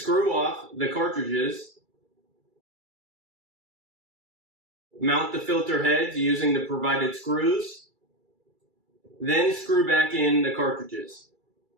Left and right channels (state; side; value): late; left; 2.3 ms